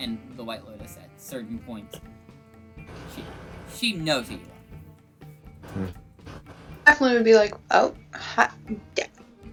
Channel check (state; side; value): identical; both; correlation 1.00